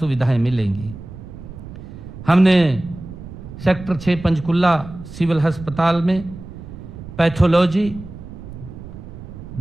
मिलेंगी। हमने सेक्टर 6 पंचकुला सिविल अस्पताल में पैथोलॉजी,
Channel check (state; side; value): noise; right; rumble, 13 dB below the sound